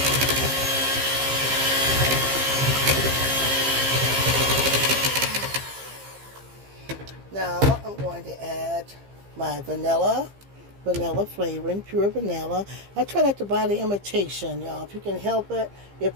Now I'm going to add my vanilla flavoring, pure vanilla. I try not to buy the imitation, y'all. If you can help it, if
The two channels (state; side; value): late; left; 15 ms